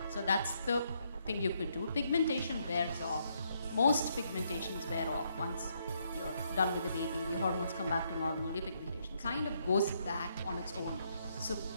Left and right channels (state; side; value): inverted; both; correlation -0.75